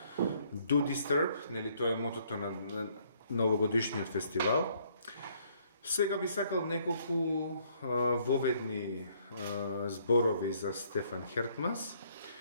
Do Disturb, нели тоа е мотото на новогодишниот фестивал. Сега би сакал неколку воведни зборови за Стефан Хертманс.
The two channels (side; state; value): both; inverted; correlation -0.66